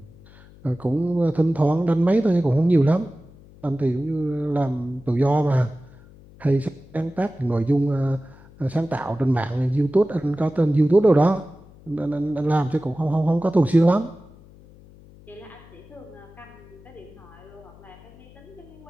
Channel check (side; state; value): left; noise; hum, 23 dB below the sound